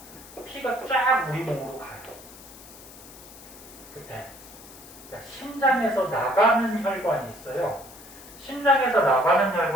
피가 쫙 우리 몸으로 가요. 그때 그러니까 심장에서 나가는 혈관이 있어요. 심장에서 나가는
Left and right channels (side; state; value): left; noise; hiss, 18 dB below the sound